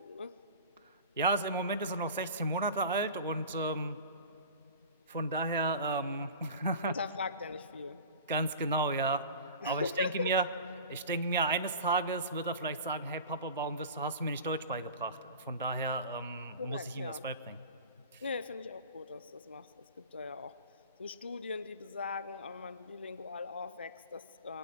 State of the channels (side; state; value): both; inverted; correlation -0.37